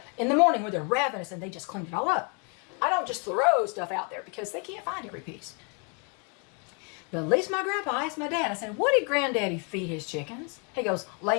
in the morning where they're ravenous and they just cleaned it all up. I don't just throw stuff out there because they can't find every piece. But at least my grandpa asked my dad. I said, what did granddaddy feed his chickens? He goes,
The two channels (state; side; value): quieter; right; 36.0 dB